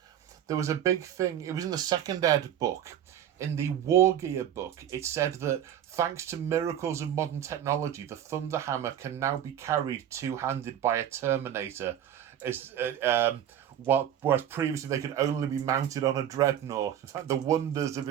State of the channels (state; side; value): quieter; left; 10.3 dB